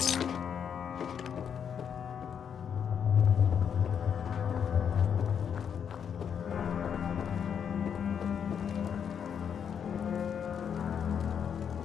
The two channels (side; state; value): right; quieter; 7.7 dB